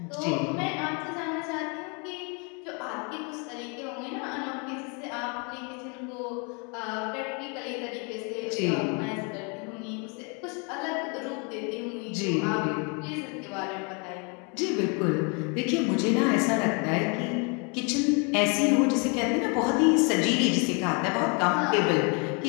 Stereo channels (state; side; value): quieter; right; 33.9 dB